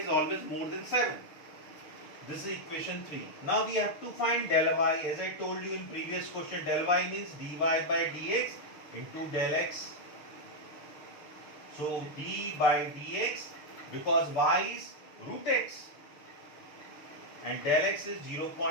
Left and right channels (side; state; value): right; late; 6.6 ms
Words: always more than 7. This is equation 3. Now we have to find del y. As I told you in previous question, del y means dy by dx into del x. So d by dx, because y is root x and del x is